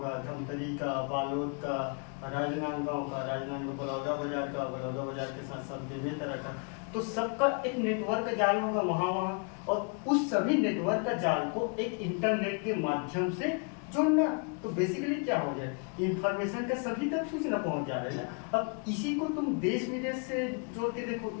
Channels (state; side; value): quieter; right; 38.0 dB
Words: धमतरी का, बालोद का, राजनांदगांव का, राजनांदगांव बलौदा बाजार का, बलौदा बाजार के साथ साथ बेमेतरा का। तो सबका एक नेटवर्क जाल होगा वहाँ, और उस सभी नेटवर्क का जाल को एक इंटरनेट के माध्यम से जोड़ना। तो बेसिकली क्या हो जाए, इंफॉर्मेशन का सभी तक सूचना पहुंच जा रही है ना। अब इसी को तुम देश विदेश से जोड़ के देखो,